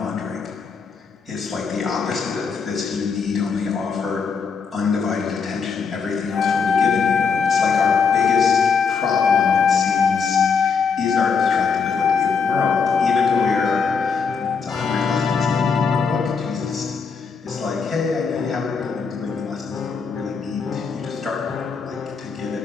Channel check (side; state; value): right; quieter; 5.6 dB